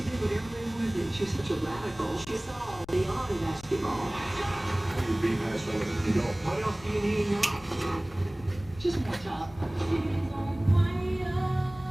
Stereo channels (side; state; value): left; noise; rumble, 21 dB below the sound